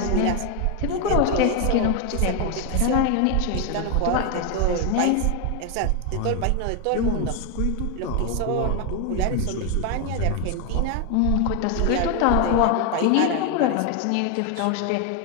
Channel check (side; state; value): both; different; correlation 0.01